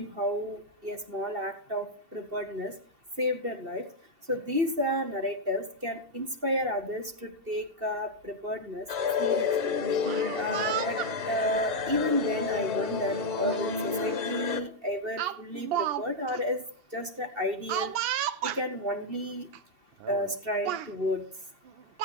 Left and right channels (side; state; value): left; late; 2.7 ms